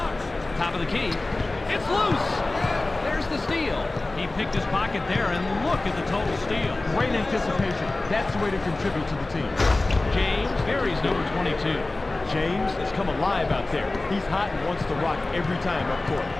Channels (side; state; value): right; quieter; 3.0 dB